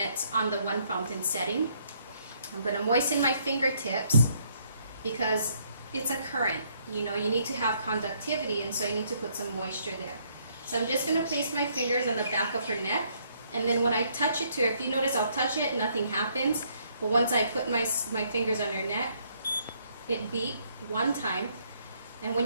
on the 1 fountain setting. I'm going to moisten my fingertips because it's a current. You know, you need to have conductivity, and so you need to put some moisture there. So I'm just going to place my fingers on the back of her neck, and then when I touch it to her, if you notice, I'll touch it, nothing happens. But once I put my fingers on her neck, it beeps 1 time. And when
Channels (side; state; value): both; inverted; correlation -0.69